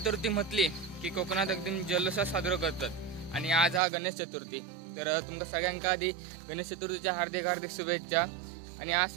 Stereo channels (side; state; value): left; drops out; at 3.8 s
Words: म्हटली की कोकणात एकदम जल्लोषात साजरा करतात आणि आज हा गणेश चतुर्थी। तर तुमच्या सगळ्यांका आधी गणेश चतुर्थीच्या हार्दिक हार्दिक शुभेच्छा। आणि आज